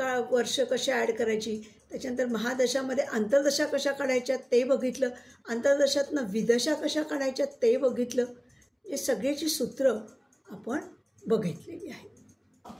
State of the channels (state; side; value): identical; both; correlation 1.00